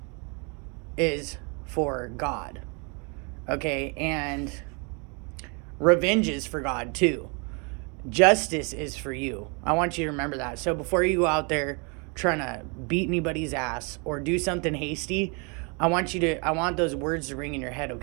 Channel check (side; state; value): left; quieter; 33.3 dB